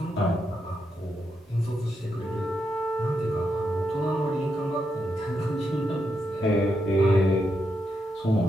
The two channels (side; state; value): both; normal; correlation 0.83